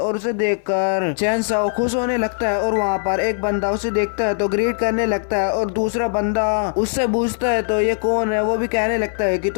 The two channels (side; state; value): right; silent; 57 dB below the other